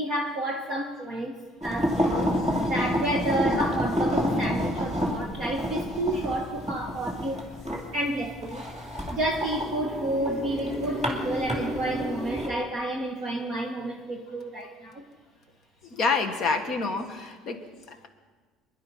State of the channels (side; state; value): both; normal; correlation 0.59